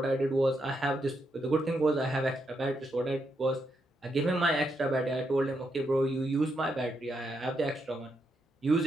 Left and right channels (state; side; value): normal; both; correlation 0.81